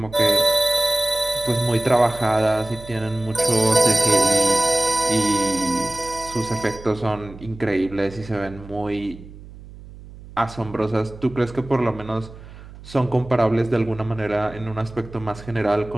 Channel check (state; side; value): noise; right; hum, 17 dB below the sound